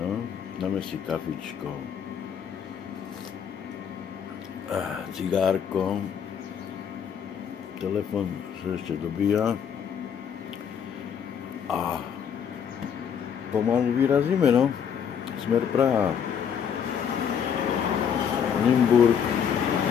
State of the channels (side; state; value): right; quieter; 7.8 dB